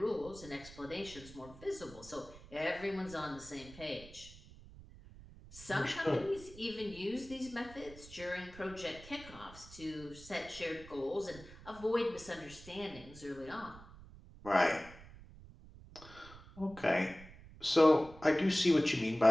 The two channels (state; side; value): noise; right; rumble, 18 dB below the sound